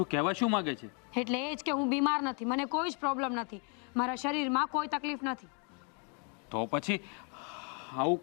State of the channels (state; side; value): quieter; right; 37.4 dB